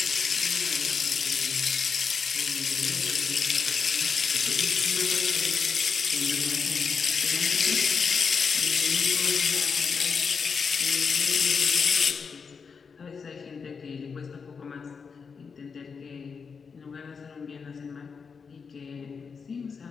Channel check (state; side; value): quieter; right; 5.6 dB